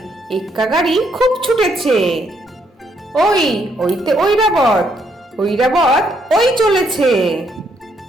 এক্কা গাড়ি খুব ছুটেছে। ওইতে ঐরাবত, ঐরাবত ওই চলেছে।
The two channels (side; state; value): both; normal; correlation 0.73